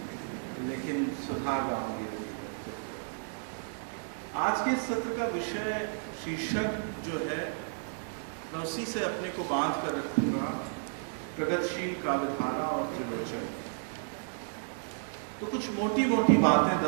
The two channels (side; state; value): left; silent; digital silence